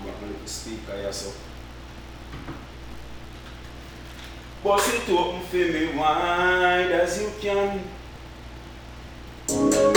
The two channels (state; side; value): identical; both; correlation 1.00